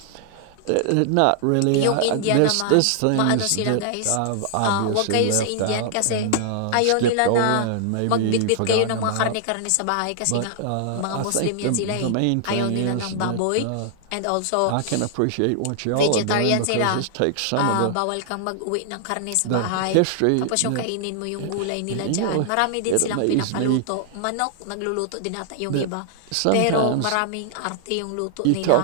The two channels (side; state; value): both; different; correlation -0.01